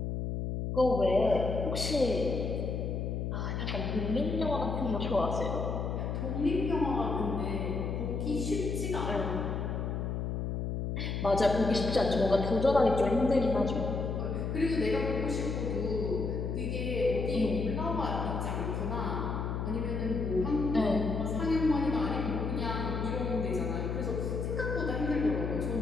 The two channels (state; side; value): noise; left; hum, 2 dB below the sound